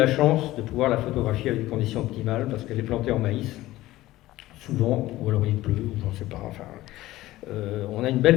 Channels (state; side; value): quieter; right; 16.6 dB